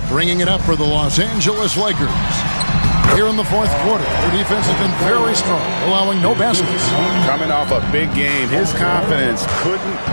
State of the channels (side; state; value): both; inverted; correlation -1.00